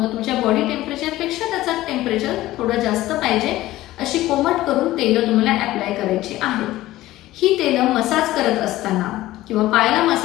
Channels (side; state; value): right; quieter; 16.1 dB